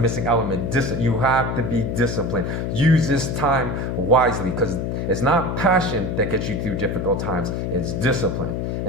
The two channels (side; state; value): left; noise; hum, 2 dB below the sound